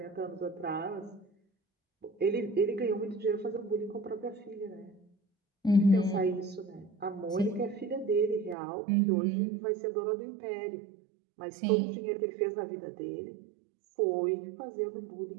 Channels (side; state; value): left; drops out; at 8.6 s